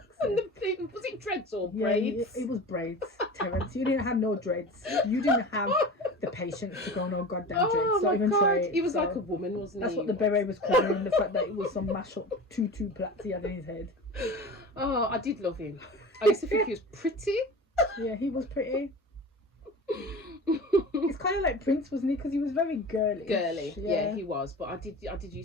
And sake. the thing, was it dreads or Yeah, braids? it was braids, Terence. You didn't have no dreads. You didn't have the patience to go no goddamn dreads. Oh Don't my even god, try it. he was So like a woman, wasn't that's he? what the beret was covering, the fact that it was some mash up tutu plaits he had in his head. Oh, I did love him. I used to think he was pretty. Yeah, he was pretty. It's kind of like Prince, wasn't he? Because he was very girly. Girly, yeah, he was. But I did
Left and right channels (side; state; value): both; normal; correlation 0.34